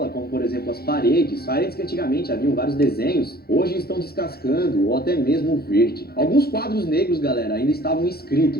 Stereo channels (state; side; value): late; right; 0.45 ms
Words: como por exemplo as paredes que antigamente haviam vários desenhos, hoje estão descascando ou até mesmo verde. Alguns quadros negros, galera, ainda estavam